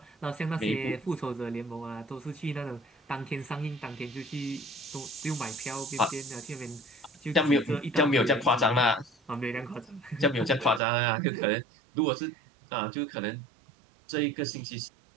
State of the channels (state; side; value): drops out; left; at 10.8 s